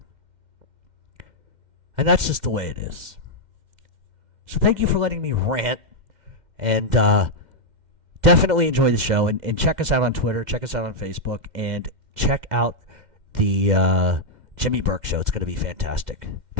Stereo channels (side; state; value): left; late; 2.1 ms